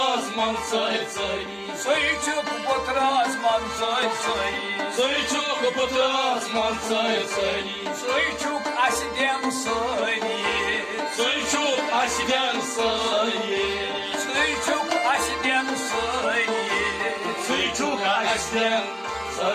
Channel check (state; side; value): identical; both; correlation 1.00